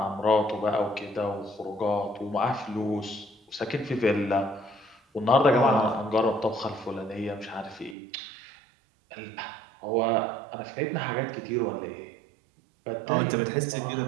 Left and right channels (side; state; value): left; drops out; at 8.0 s